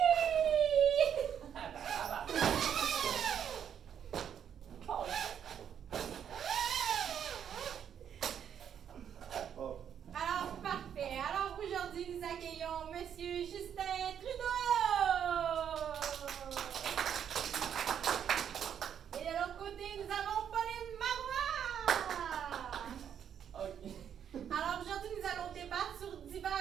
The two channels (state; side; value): quieter; left; 8.7 dB